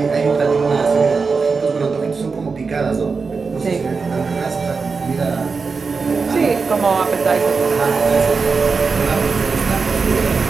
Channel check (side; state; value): left; quieter; 4.8 dB